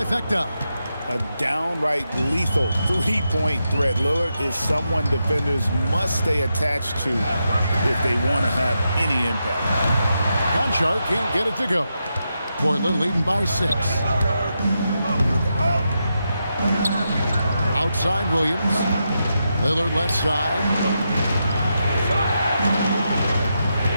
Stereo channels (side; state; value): both; inverted; correlation -0.86